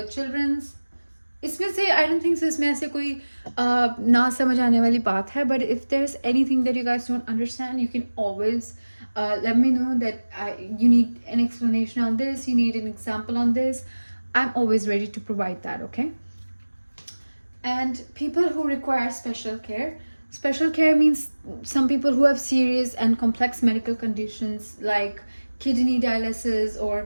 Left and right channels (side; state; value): both; inverted; correlation -1.00